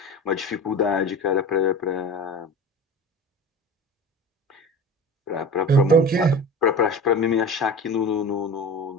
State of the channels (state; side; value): normal; both; correlation 0.34